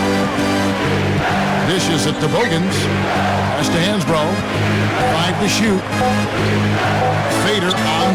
Dishes it to Bogans. Pass to Hansbrough. 5 to shoot. Fader on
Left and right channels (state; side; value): identical; both; correlation 1.00